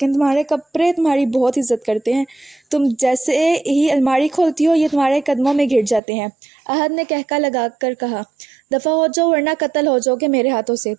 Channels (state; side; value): drops out; left; at 6.0 s